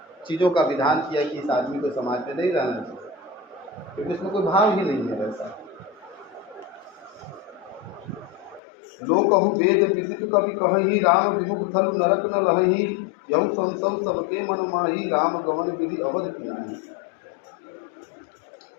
चीज़ों का विधान किया कि इस आदमी को समाज में नहीं रहना चाहिए, क्योंकि उसमें कोई भाव ही नहीं है वैसा। लोग कहूँ वेद विदित कवि कहीं राम विमुख थल नरक न लही, यहु संसव सबके मन माही राम गमन विधि अवध पिनाही।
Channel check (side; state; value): right; drops out; at 8.6 s